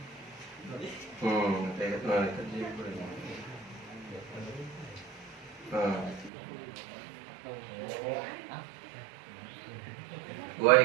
kayak mana tadi wa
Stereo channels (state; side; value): drops out; left; at 6.3 s